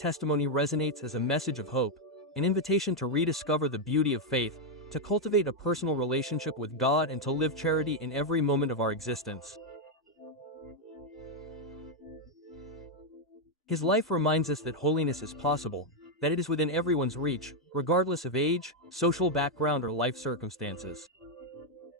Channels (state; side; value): normal; both; correlation 0.01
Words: resonates as a message of hope, an invitation to rediscover the beauty of faith, to cultivate a personal relationship with God and to live charity in every moment of our existence. His life reminds us that holiness is possible, that it is within everyone's reach, regardless of age, social background, or life circumstances.